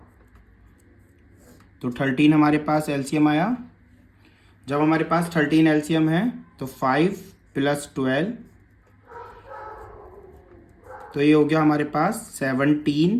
तो 13 हमारे पास एलसीएम आया। जब हमारे पास 13 एलसीएम है तो 5 + 12, तो ये हो गया हमारे पास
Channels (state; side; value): identical; both; correlation 1.00